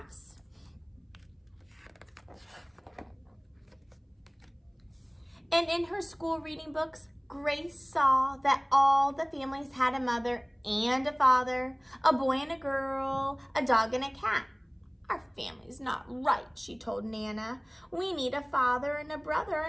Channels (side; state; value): both; identical; correlation 1.00